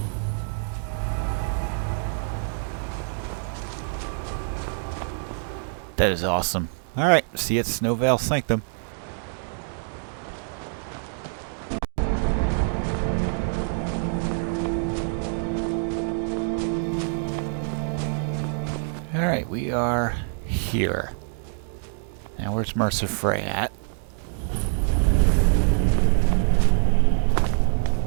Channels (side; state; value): left; silent; digital silence